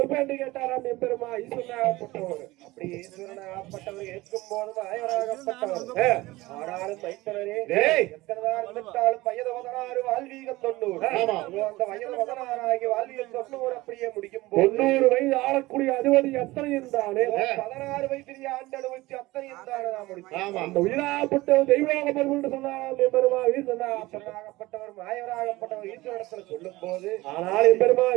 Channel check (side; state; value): left; quieter; 19.6 dB